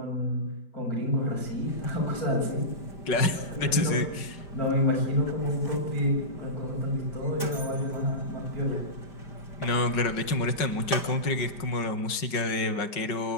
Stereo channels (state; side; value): late; right; 5.4 ms